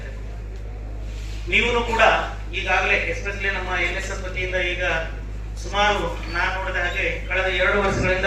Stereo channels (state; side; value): identical; both; correlation 1.00